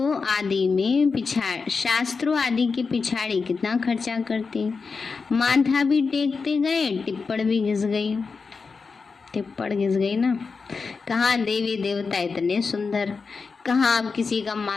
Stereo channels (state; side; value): quieter; right; 4.8 dB